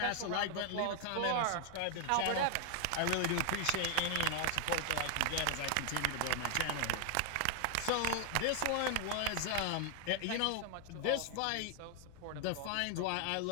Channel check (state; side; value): different; both; correlation 0.00